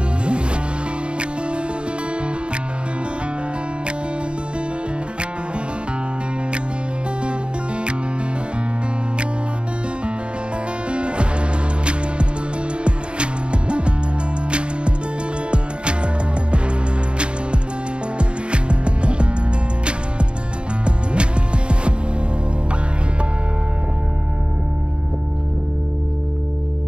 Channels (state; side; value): late; left; 0.054 ms